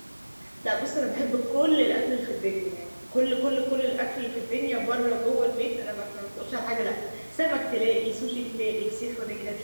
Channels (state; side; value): inverted; both; correlation -1.00